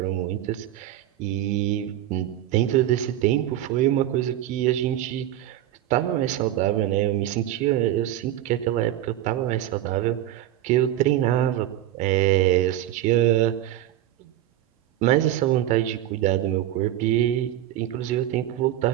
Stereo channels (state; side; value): quieter; left; 12.9 dB